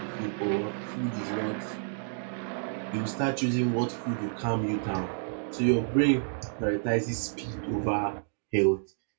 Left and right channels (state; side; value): silent; left; digital silence